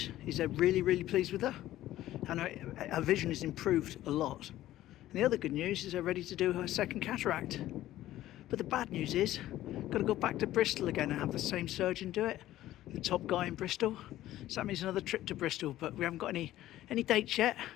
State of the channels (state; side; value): quieter; right; 14.3 dB